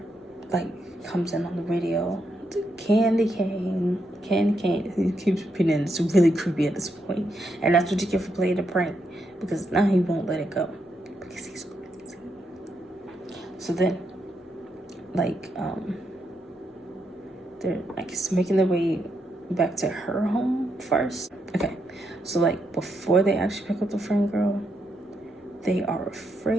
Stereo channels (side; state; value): both; normal; correlation 0.80